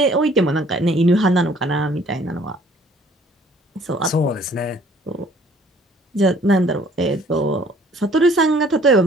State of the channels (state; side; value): normal; both; correlation 0.58